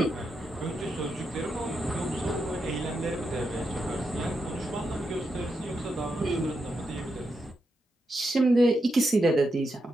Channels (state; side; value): normal; both; correlation 0.85